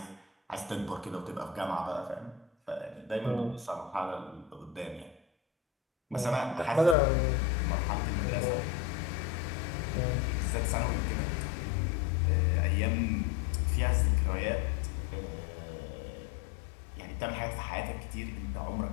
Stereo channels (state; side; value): drops out; right; at 7.0 s